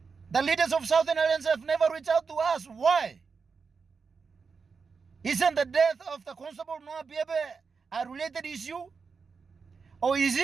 The leaders of Southern Islands have never reached out to us. Why? Isn't the death of the Constable Noah Biabe a related issue? Or is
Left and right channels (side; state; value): left; quieter; 5.2 dB